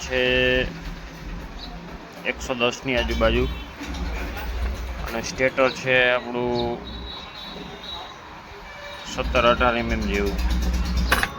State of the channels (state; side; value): identical; both; correlation 1.00